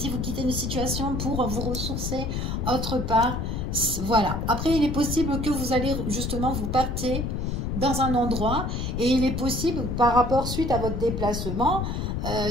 vous quittez une situation pour vous ressourcer autre part, voilà. Après il est possible que vous allez justement, vous partez dans un endroit et il est possible par rapport suite à votre déplacement,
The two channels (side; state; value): left; noise; rumble, 2 dB below the sound